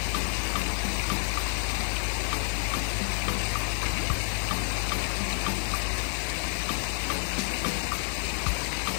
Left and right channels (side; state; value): right; silent; digital silence